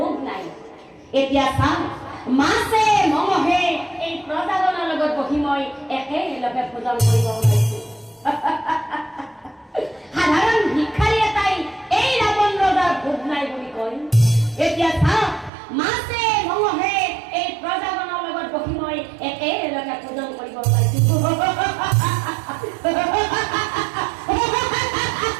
নাই, এতিয়া চাম মাছে মঙহে এই প্ৰজাজনৰ লগত বহি মই একেলগে ভোজন কৰিব ওলাইছো। সাধাৰণ ভিক্ষাৰী এটাই এই ৰাৱণ ৰজাৰ ভোগ নাই বুলি কয়, এতিয়া চাম মাছে মঙহে এই প্ৰজাজনৰ লগত বহি মই একেলগে ভোজন কৰিব ওলাইছো।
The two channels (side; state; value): left; drops out; at 15.5 s